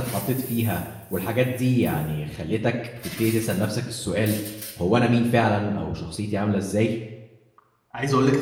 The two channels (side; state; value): both; identical; correlation 1.00